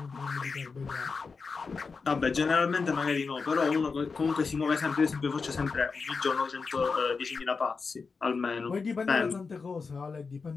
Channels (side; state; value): right; quieter; 4.8 dB